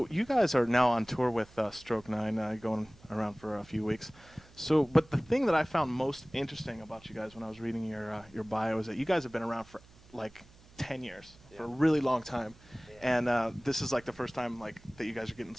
you guys are now on tour with Stroke 9, going around for a few weeks. So, but the thing that I found most interesting about you guys when I was reading your bio is that you guys have been around for like 10 years, for a really long time. Yeah. And this is like the first time like that you guys are getting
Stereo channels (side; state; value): right; noise; hum, 25 dB below the sound